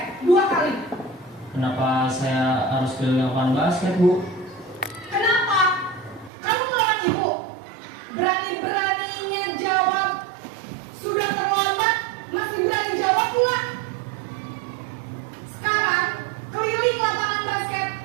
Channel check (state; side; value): drops out; left; at 6.3 s